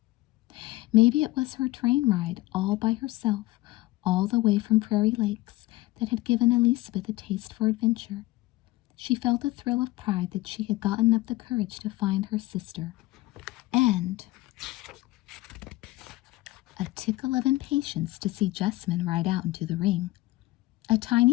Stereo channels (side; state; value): right; quieter; 19.0 dB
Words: Maybe it was her train ride all by herself, all the way from Prairie Lakes, that had given Elizabeth a taste for adventure. She felt a thrill of pride that she had gotten up the courage to find her sister, and a tickle of impatience to see Jessamine ride out into the ring. A